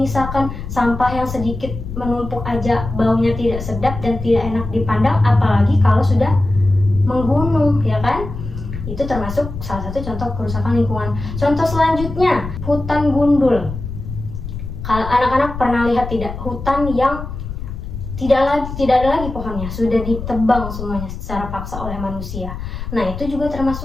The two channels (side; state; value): left; noise; rumble, 8 dB below the sound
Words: sampah yang sedikit menumpuk aja baunya tidak sedap dan tidak enak dipandang, apalagi kalau sudah menggunung, ya kan? Itu termasuk salah satu contoh kerusakan lingkungan. Contoh selanjutnya, hutan gundul. Kalau anak-anak pernah lihat tidak, hutan yang tidak ada lagi pohonnya, sudah ditebang semuanya secara paksa oleh manusia. Nah, itu juga